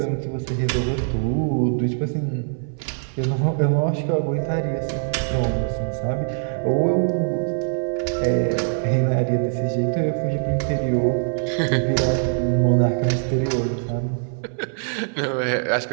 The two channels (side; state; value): left; silent; 61 dB below the other